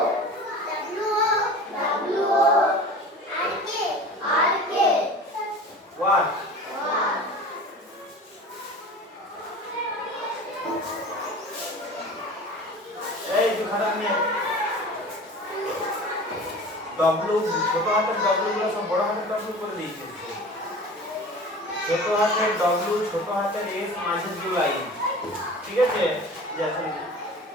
What? এই তুই খারাপ নিয়ে ডব্লু ছোট হাতের ডব্লু গুলো সব বড় হাতের ডব্লু করে দিয়েছে ছোট হাতের ডব্লু ছোট হাতের এস মাঝের যে লাইন ঠিক আছে যখন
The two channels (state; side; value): normal; both; correlation 0.38